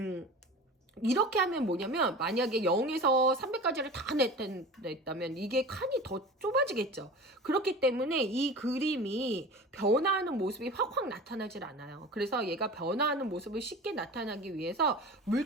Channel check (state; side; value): normal; both; correlation 0.36